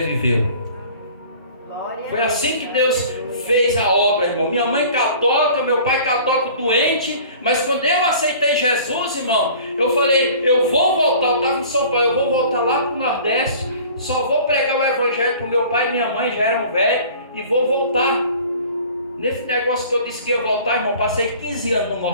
Foi assim que Deus fez a obra, irmão. Minha mãe católica, meu pai católico doente. Mas quando eu aceitei Jesus, irmão, eu falei: eu vou voltar. Eu estava em São Paulo, eu vou voltar lá para o Nordeste. Só vou pregar o evangelho para o meu pai e minha mãe, já eram velhos, e vou voltar. Nesse negócio que eu disse que ia voltar, irmão, passei 15 anos no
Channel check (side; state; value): both; inverted; correlation -0.46